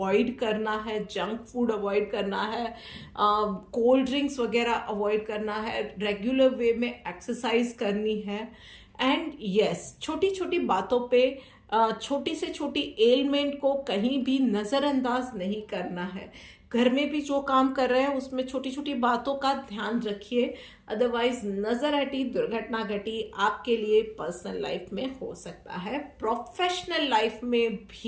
करना है, जंक फूड अवॉइड करना है, कोल्ड ड्रिंक्स वगैरह अवॉइड करना है, रेगुलर वे में एक्सरसाइज करनी है। एंड यस, छोटी छोटी बातों पे, छोटी से छोटी एलिमेंट को कहीं भी नज़रअंदाज नहीं करना है। घर में भी जो काम कर रहे हैं उसमें छोटी छोटी बातों का ध्यान रखिए, अदरवाइज नजर हटी, दुर्घटना घटी आपके लिए पर्सनल लाइफ में हो सकता है। प्रोफेशनल लाइफ में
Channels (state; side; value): identical; both; correlation 1.00